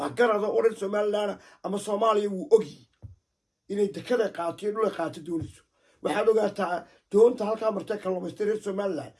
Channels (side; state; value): both; identical; correlation 1.00